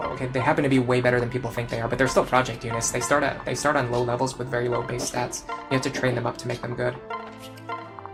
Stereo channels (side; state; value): both; identical; correlation 1.00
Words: okay, they happen to be way better than people think they are, but they're still project units. They start on low levels with very low base stats. You have to train them up to make them good.